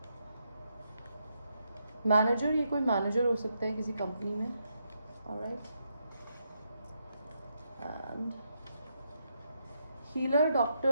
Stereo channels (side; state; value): both; inverted; correlation -0.80